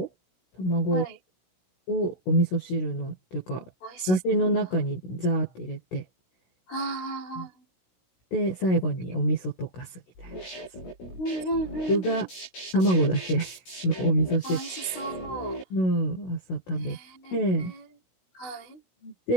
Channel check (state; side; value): late; right; 16 ms